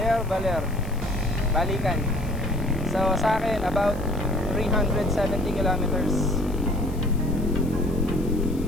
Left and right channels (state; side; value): noise; left; hiss, 22 dB below the sound